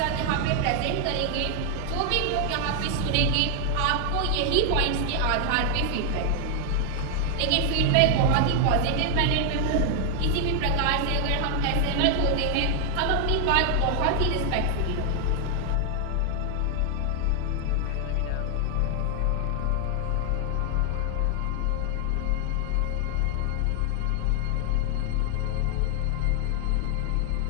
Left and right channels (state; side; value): different; both; correlation 0.00